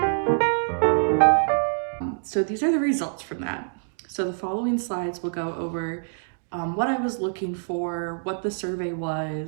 So these are the results from that. So the following slides will go over what I was looking for, what the survey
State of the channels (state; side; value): silent; left; digital silence